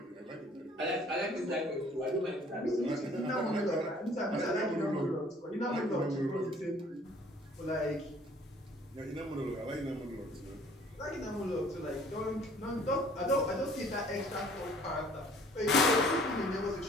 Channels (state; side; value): normal; both; correlation 0.55